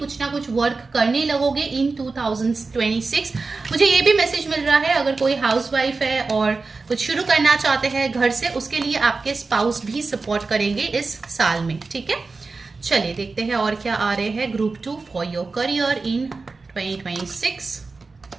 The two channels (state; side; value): quieter; left; 4.0 dB